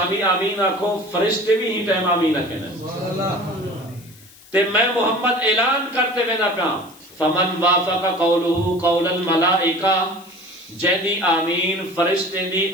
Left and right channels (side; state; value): left; noise; hiss, 24 dB below the sound